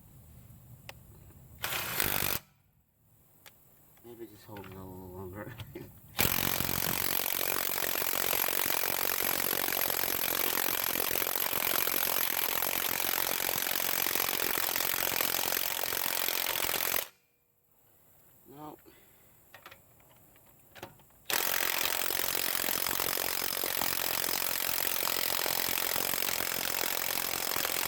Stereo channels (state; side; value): identical; both; correlation 1.00